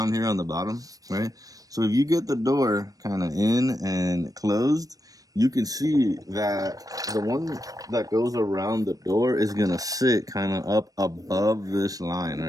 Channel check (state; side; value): late; left; 0.18 ms